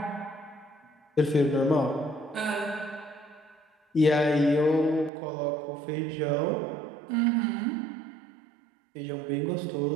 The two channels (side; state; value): left; drops out; at 5.1 s